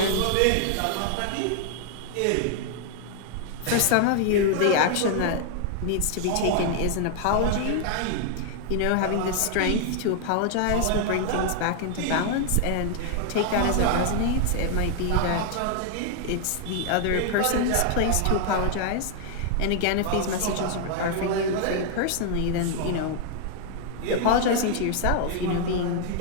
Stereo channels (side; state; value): both; different; correlation 0.00